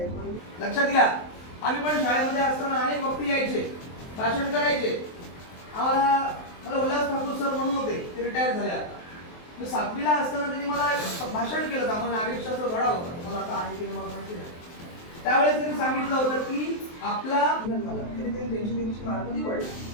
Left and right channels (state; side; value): late; right; 23 ms